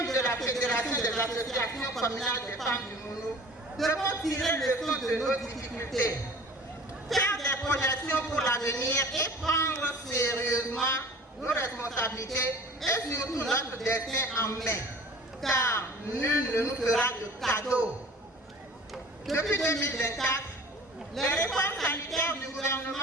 de la Fédération des associations communales des femmes du Mono, devons tirer leçon de nos difficultés, faire des projections pour l'avenir et prendre sérieusement nos responsabilités et surtout notre destin en main, car nul ne nous fera de cadeau. Depuis 2024, les réformes sanitaires du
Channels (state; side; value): normal; both; correlation 0.44